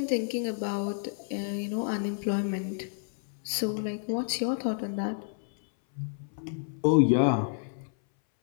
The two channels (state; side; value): silent; right; 58 dB below the other